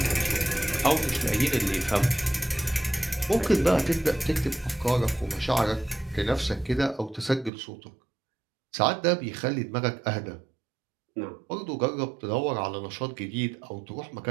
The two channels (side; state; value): left; drops out; at 7.5 s